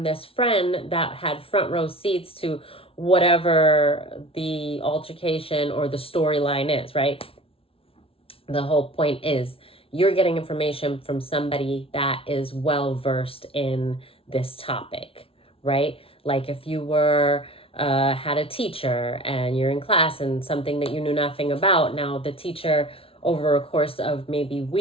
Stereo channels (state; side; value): late; right; 0.26 ms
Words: this friend that had front row seats to whatever the altercation or the storyline is, right? The whole point is you're getting information from somebody that is well versed in this topic, right? Like if you were had a teacher and you're in class and something that you knew nothing about, now the teacher over a course of maybe